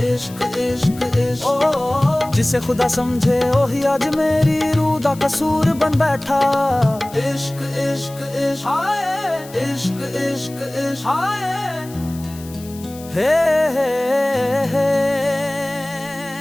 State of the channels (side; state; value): left; noise; hiss, 19 dB below the sound